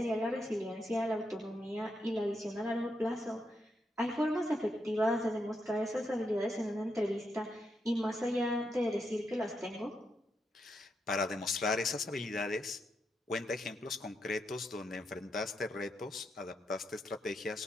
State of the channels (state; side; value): normal; both; correlation 0.82